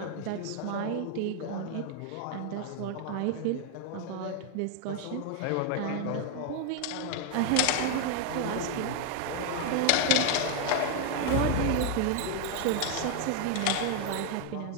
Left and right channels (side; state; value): both; different; correlation 0.01